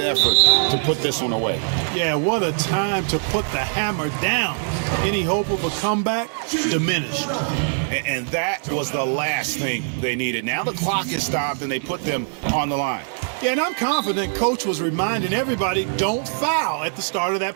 to put this one away. Yeah, what a time to put the hammer down. Any hope of a comeback diminished. And that was the last thing they needed. Now the clock is stopped and they put them on the line. Yeah, and I'm confident Coach was reminding everybody, don't foul at the start of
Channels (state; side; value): silent; left; digital silence